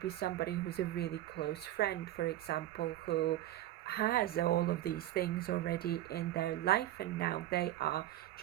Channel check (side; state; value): left; quieter; 14.1 dB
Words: somebody who's a really close friend, for example, who has all of these things already in their life, and now they are